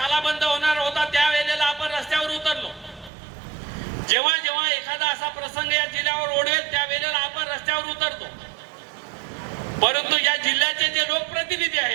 बंद होणार होता त्या वेळेला आपण रस्त्यावर उतरलो. जेव्हा जेव्हा एखादा असा प्रसंग या जिल्ह्यावर ओढवेल त्या वेळेला आपण रस्त्यावर उतरतो. परंतु या जिल्ह्याचे जे लोकप्रतिनिधी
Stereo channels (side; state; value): left; drops out; at 3.1 s